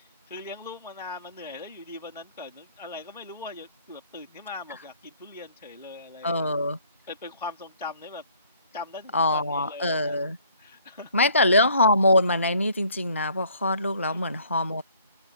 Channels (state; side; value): inverted; both; correlation -0.60